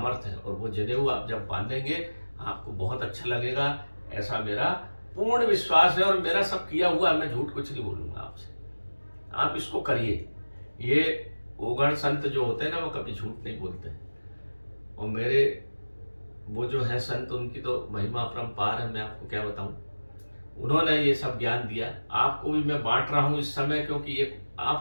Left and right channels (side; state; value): both; inverted; correlation -1.00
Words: है। और वो जनेऊ आप जब बांधेंगे आपको बहुत अच्छा लगेगा, ऐसा मेरा पूर्ण विश्वास है। और मेरा सब किया हुआ है, मैं झूठ कुछ नहीं बोलूँगा आपसे। आप इसको करिए। ये ओघड़ संत जो होते हैं ना, वो कभी झूठ नहीं बोलते हैं। और मेरे वो जो है संत, उनकी तो महिमा अपरंपार है, मैं आपको क्या बताऊं। उन्होंने ये सब ज्ञान दिया, आपको भी मैं बांट रहा हूं इस समय, क्योंकि ये